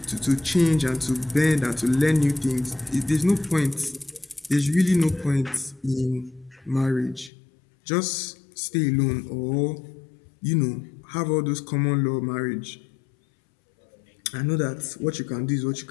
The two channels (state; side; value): drops out; right; at 7.3 s